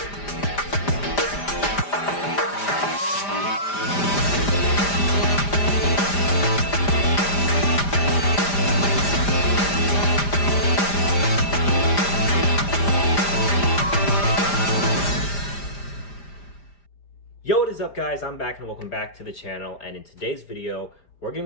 Yo, what is up, guys? I'm back and welcome back to the channel. And in today's video, we're going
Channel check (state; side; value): late; right; 5.0 ms